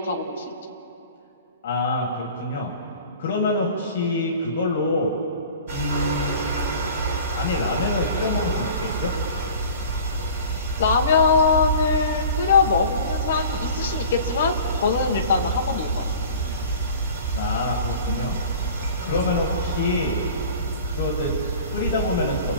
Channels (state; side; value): inverted; both; correlation -0.42